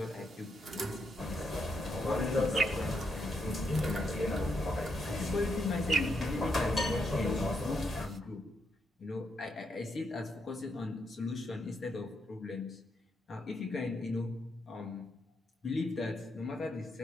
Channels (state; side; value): normal; both; correlation 0.80